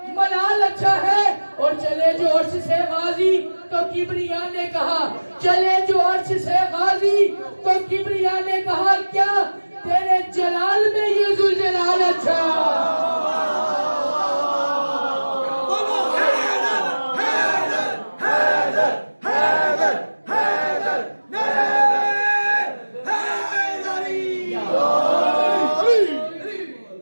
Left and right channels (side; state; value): both; inverted; correlation -1.00